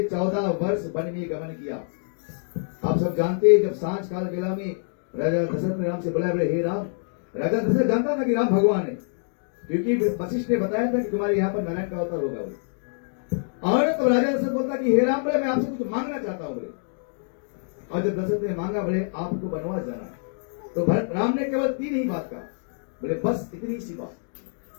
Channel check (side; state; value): right; silent; digital silence